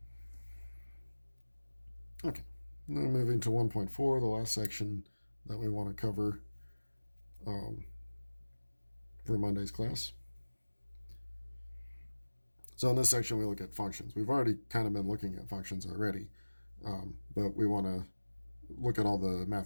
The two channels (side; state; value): both; inverted; correlation -1.00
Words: Okay, now moving to 1.4, the last section that we want to cover for Monday's class. So in this section, we look at functions. We've already kind of been looking at functions already, but we want to look at all the